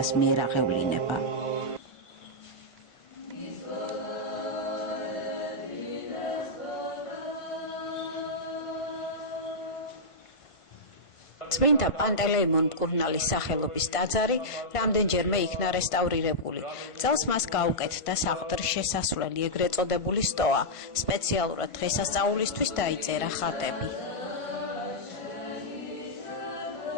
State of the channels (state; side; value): late; right; 1.5 ms